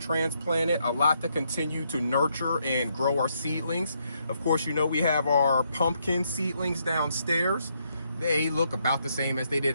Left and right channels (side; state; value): both; inverted; correlation -0.76